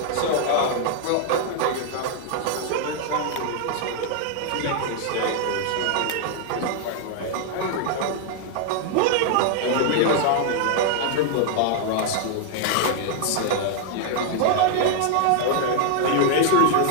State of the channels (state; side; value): different; both; correlation 0.00